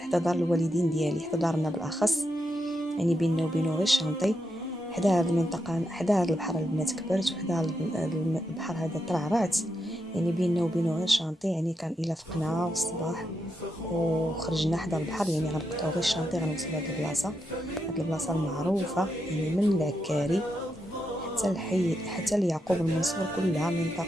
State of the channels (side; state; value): both; normal; correlation 0.84